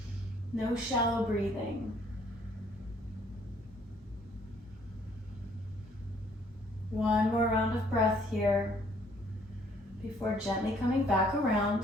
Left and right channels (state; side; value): normal; both; correlation 0.62